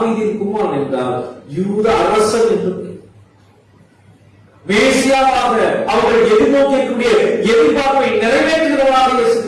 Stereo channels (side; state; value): both; identical; correlation 1.00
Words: குமாரன் என்றால் யூத அரசன் என்று மேசியாவாக அவர்கள் எதிர்நோக்கக்கூடிய எதிர்பார்ப்பை நிறைவேற்றுகிறவராக இயேசு